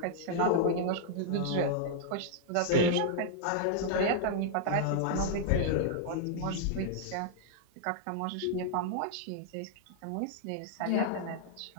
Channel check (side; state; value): both; different; correlation -0.01